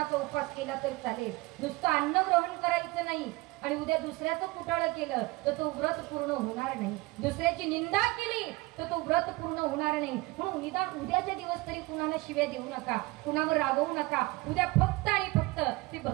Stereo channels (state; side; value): quieter; left; 22.8 dB